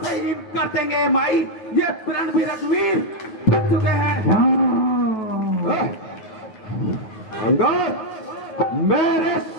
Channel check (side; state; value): right; late; 9.5 ms